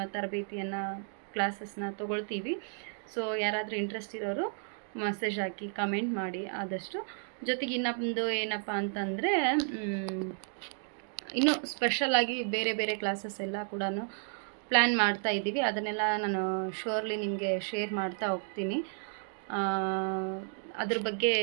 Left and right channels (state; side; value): silent; left; 56 dB below the other